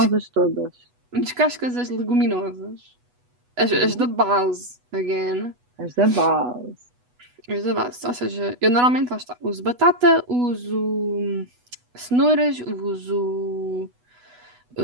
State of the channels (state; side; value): late; left; 8.1 ms